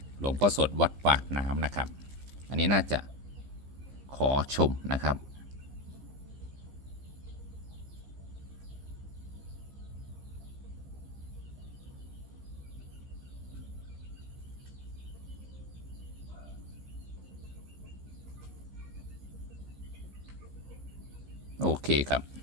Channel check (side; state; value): left; late; 15 ms